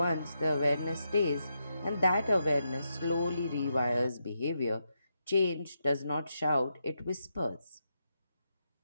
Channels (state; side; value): inverted; both; correlation -0.84